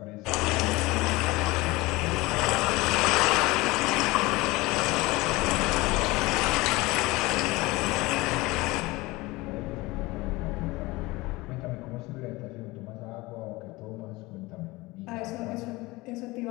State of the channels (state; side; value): quieter; right; 21.7 dB